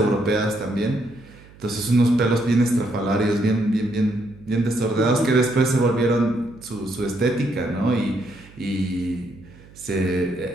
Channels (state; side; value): noise; right; hum, 23 dB below the sound